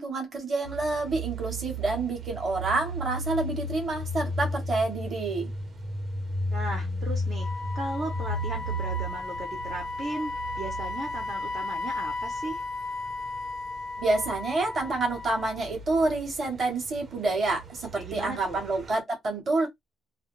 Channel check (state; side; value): normal; both; correlation 0.74